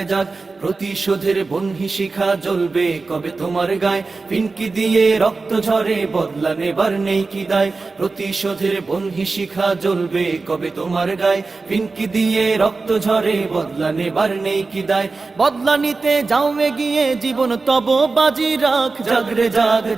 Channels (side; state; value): left; quieter; 4.0 dB